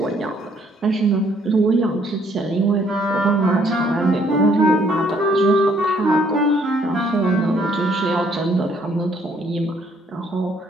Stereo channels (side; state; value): both; normal; correlation 0.66